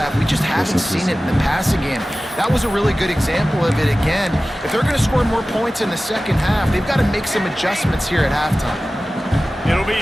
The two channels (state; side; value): normal; both; correlation 0.96